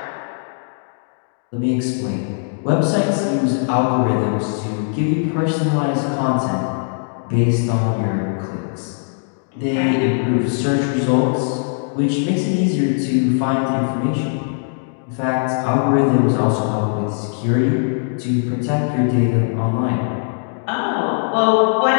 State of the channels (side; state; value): right; silent; digital silence